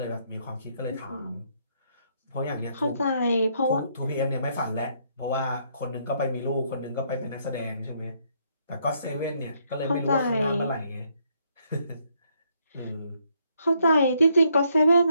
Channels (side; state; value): both; inverted; correlation -0.71